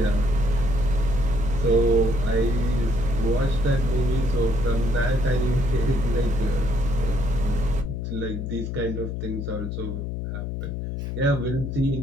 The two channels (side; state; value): left; noise; hum, 4 dB below the sound